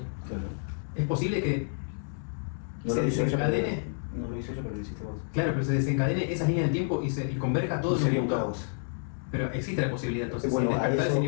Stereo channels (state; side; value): silent; right; digital silence